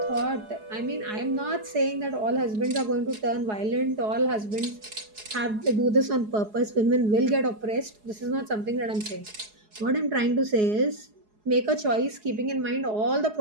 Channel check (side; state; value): left; late; 4.8 ms